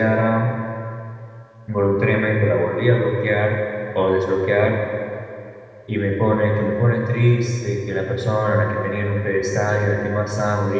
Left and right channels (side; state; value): both; identical; correlation 1.00